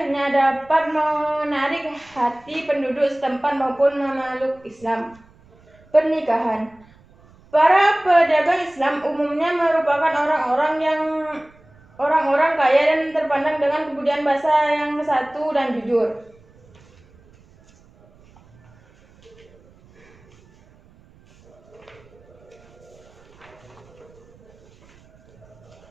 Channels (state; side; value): noise; right; rumble, 28 dB below the sound